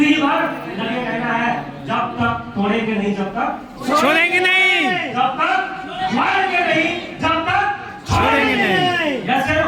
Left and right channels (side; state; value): both; identical; correlation 1.00